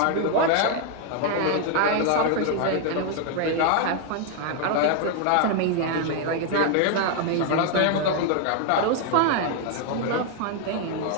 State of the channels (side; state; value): both; different; correlation 0.00